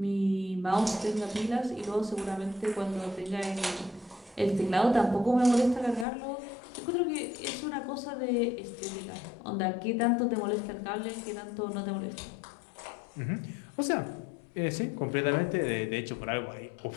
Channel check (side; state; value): right; drops out; at 6.1 s